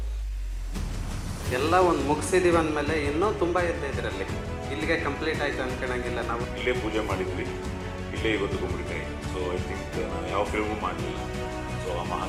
ಎಲ್ಲ ಒಂದು ಮುಗಿಸಿದೀವಿ ಅಂದಮೇಲೆ ಇನ್ನೂ ತುಂಬ ಇದೆ ಇದರಲ್ಲಿ. ಇಲ್ಲಿಗೆ ಕಂಪ್ಲೀಟ್ ಆಯಿತು ಅನ್ಕೊಳಂಗಿಲ್ಲ. ನಾವು ಇಲ್ಲೇ ಪೂಜೆ ಮಾಡಿದ್ವಿ, ಇಲ್ಲೇ ಇವತ್ತು ಗುಂಬಳಿಕಾಯಿ. ಸೊ ಐ ಥಿಂಕ್ ನಾವು ಯಾವ ಫಿಲ್ಮು ಮಾಡಲಿಲ್ಲ. ಸೊ ಆ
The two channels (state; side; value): identical; both; correlation 1.00